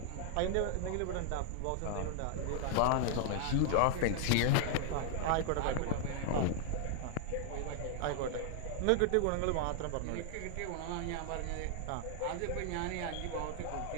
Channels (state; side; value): different; both; correlation 0.00